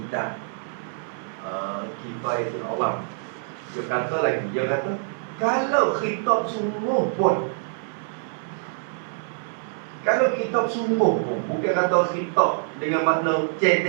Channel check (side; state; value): left; silent; 62 dB below the other